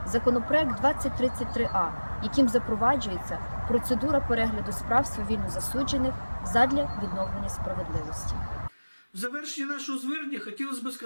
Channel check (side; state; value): both; inverted; correlation -1.00